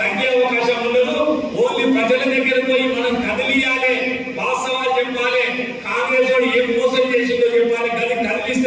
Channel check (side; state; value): both; identical; correlation 1.00